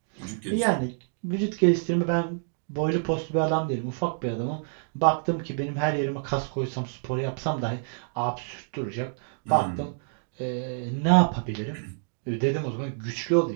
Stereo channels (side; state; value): left; silent; digital silence